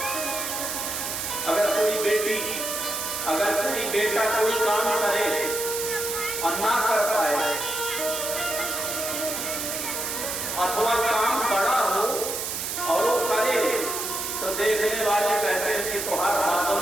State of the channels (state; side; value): noise; right; hiss, 3 dB below the sound